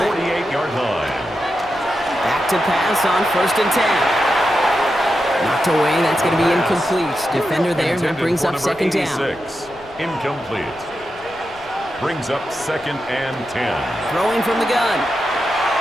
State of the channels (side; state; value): right; noise; rumble, 24 dB below the sound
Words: 48-yard line. Back to pass on 1st and 10. Knocked away, that's going to be incomplete. Defender there, that brings up 2nd down. Incomplete. Brings up 2nd and 10. Throwing from the gun.